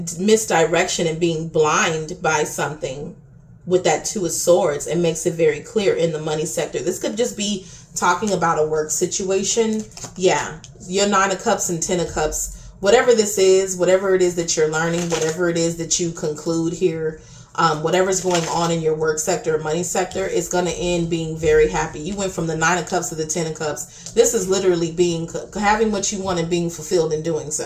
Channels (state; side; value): identical; both; correlation 1.00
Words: and being blind by something with that 2 of Swords, and makes it very clear in the money sector. This could just be talking about a work situation. Yeah, your 9 of Cups and 10 of Cups, whatever this is, whatever it is that you're learning, whatever it is that you conclude here, whatever's going on in your work sector or money sector, is going to end being very happy. You went from the 9 of Cups to the 10 of Cups. This is literally having what you want and being fulfilled in doing